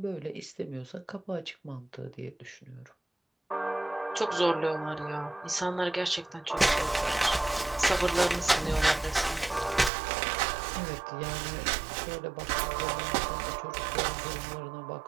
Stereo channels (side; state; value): left; drops out; at 9.9 s